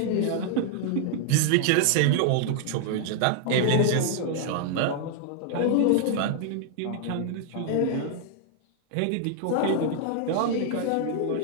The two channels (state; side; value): different; both; correlation 0.00